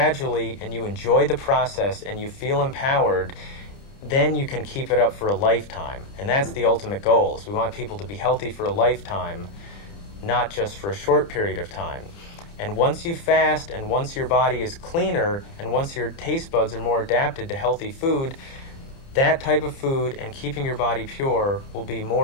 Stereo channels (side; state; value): right; late; 30 ms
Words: and you enjoy the process and you feel empowered, then you can keep it up for a lifetime. And that's the ultimate goal, is we want people to be healthy for a lifetime, not just for a short period of time. And once you fast and once your body is cleaner and once your taste buds are more adapted to healthy food, that type of food and keeping your body pure will be